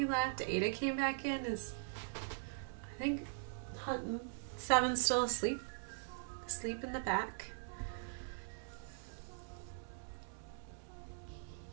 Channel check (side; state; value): left; silent; digital silence